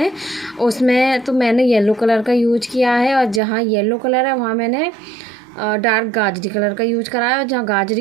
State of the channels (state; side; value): drops out; left; at 3.4 s